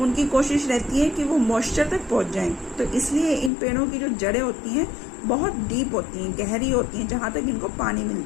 उनकी कोशिश रहती है कि वो मॉइस्चर तक पहुंच जाएं, तो इसलिए इन पेड़ों की जो जड़ें होती हैं बहुत डीप होती हैं, गहरी होती हैं, जहां तक इनको पानी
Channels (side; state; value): right; drops out; at 3.5 s